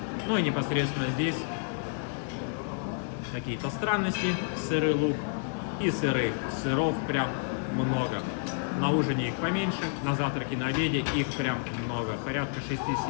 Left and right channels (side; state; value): right; silent; 58 dB below the other